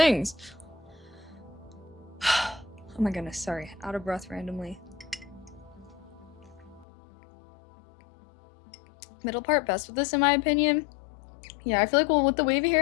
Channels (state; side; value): drops out; right; at 6.9 s